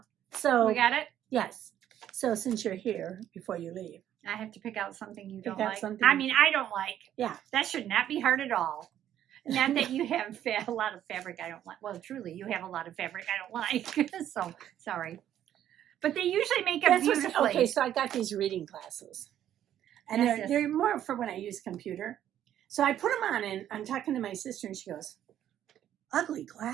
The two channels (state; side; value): quieter; left; 11.0 dB